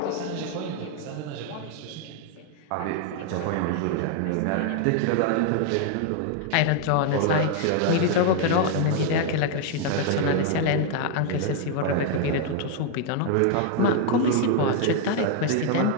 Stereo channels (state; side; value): different; both; correlation 0.00